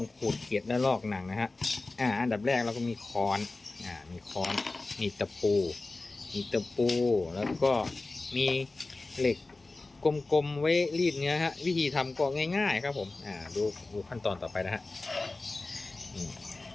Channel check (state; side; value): quieter; right; 3.3 dB